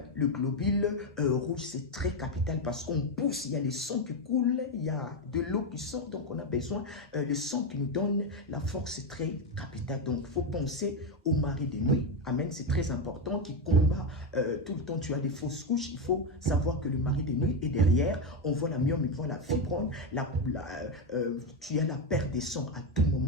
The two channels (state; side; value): normal; both; correlation 0.08